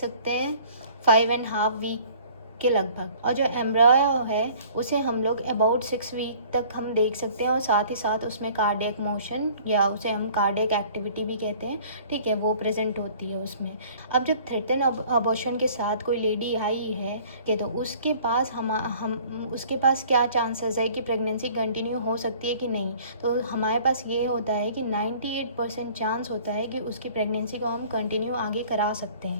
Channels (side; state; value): both; inverted; correlation -0.52